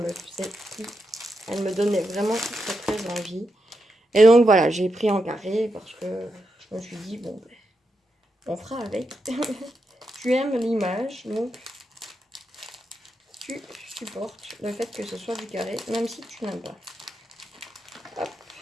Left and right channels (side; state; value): both; normal; correlation 0.85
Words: me donnait vraiment très très envie. Et donc voilà, j'ai pris en carré parce que je me suis dit, bon, on fera avec. Tu aimes l'image, donc tu supportes le fait que ce soit du carré, même si tu n'aimes pas. Hop.